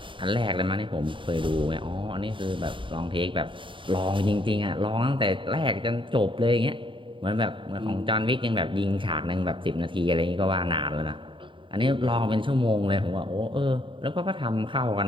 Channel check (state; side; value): late; left; 0.24 ms